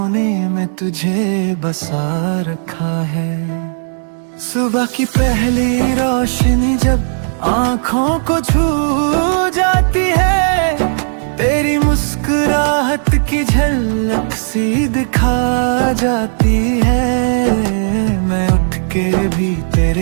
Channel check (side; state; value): left; silent; digital silence